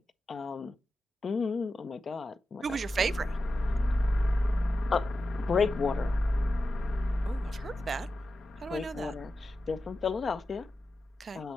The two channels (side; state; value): both; normal; correlation 0.92